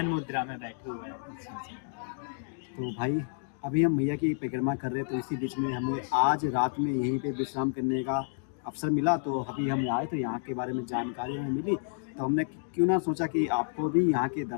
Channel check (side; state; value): right; silent; digital silence